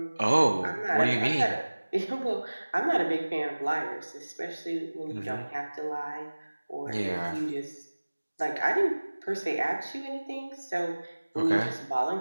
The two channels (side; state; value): both; inverted; correlation -1.00